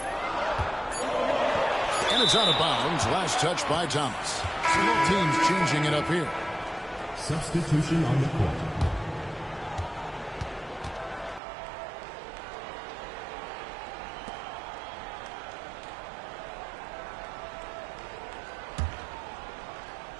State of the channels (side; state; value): left; drops out; at 11.4 s